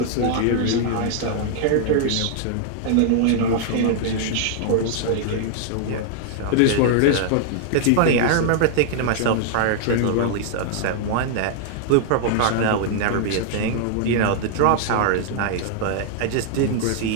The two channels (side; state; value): both; different; correlation -0.01